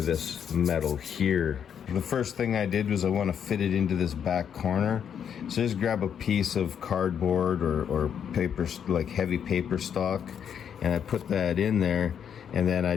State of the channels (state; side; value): quieter; right; 8.2 dB